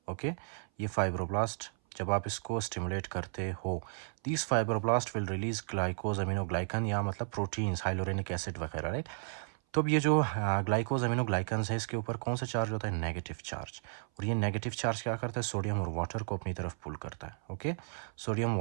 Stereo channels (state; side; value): silent; left; 55 dB below the other